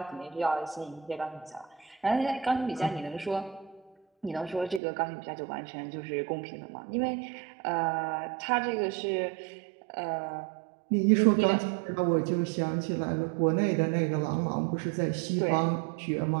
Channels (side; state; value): left; drops out; at 4.8 s